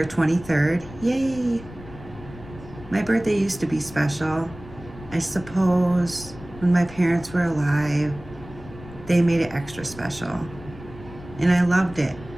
23rd. Yay! My birthday used to be special. I suppose when my parents were alive, they made it extra special. And I loved it.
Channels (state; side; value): noise; left; rumble, 17 dB below the sound